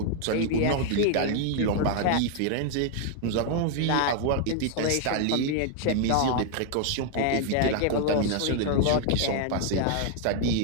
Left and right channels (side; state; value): both; different; correlation 0.00